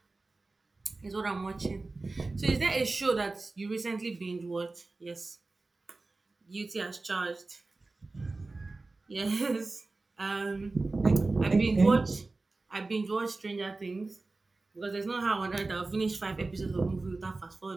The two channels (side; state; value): left; quieter; 3.4 dB